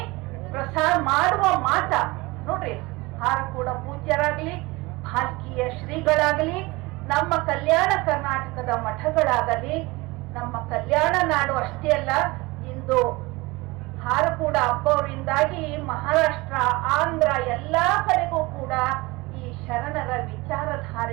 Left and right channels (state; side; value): quieter; left; 22.8 dB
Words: ಮಾಡುವ ಮಾಟ ನೋಡ್ರಿ, ಹಾರಕೂಡ ಪೂಜ್ಯರಾಗ್ಲಿ, ಭಾಲ್ಕಿಯ ಶ್ರೀಗಳಾಗಲಿ, ನಮ್ಮ ಕಲ್ಯಾಣ ಕರ್ನಾಟಕದ ಮಠಗಳಾಗಲಿ, ನಮ್ಮ ಕಲ್ಯಾಣ ನಾಡು ಅಷ್ಟೇ ಅಲ್ಲ, ಇಂದು ಹಾರಕೂಡ ಹಬ್ಬವರಿಂದಾಗಿ ಮಹಾರಾಷ್ಟ್ರ, ಆಂಧ್ರ ಎಲ್ಲಾ ಕಡೆಗೂ ಕೂಡ ಈ ಶರಣರ